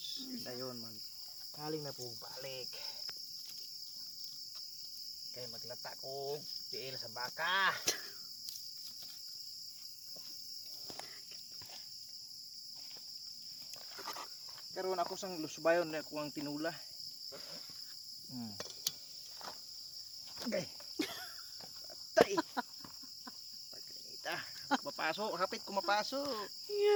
Dayon kaling na po balik. Kaya maglata ko tiil sa baka. Karon ako sang lusbayon na ako ang tinula. Okay. Patay. Pagkanita. Mapasok, hapit ko mapasok.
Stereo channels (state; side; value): identical; both; correlation 1.00